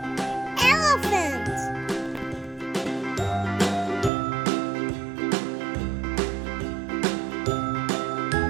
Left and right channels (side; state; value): left; drops out; at 4.1 s